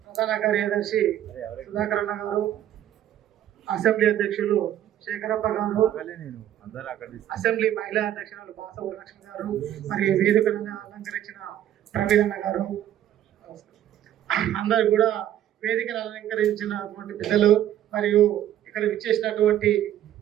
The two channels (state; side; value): quieter; left; 11.6 dB